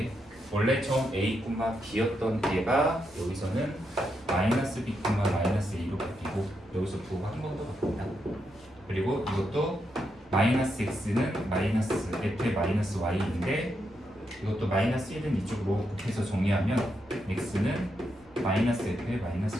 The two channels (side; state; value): both; normal; correlation 0.82